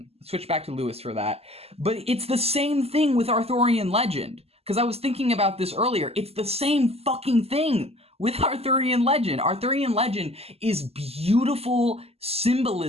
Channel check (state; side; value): late; left; 0.29 ms